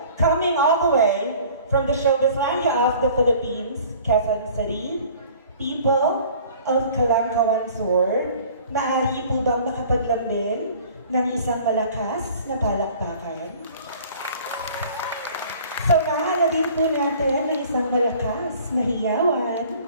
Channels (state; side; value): inverted; both; correlation -0.49